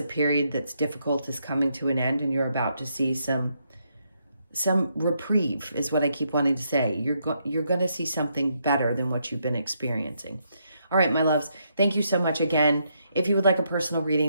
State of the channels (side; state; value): both; inverted; correlation -0.77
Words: period that's difficult is coming to an end, and you're about to see some reprieve, is what I keep wanting to say. You're going to see something better than what you've been experiencing. All right, my loves, thank you so much again. If you would like a personal